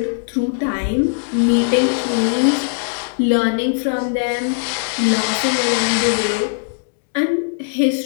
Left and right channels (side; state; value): right; silent; digital silence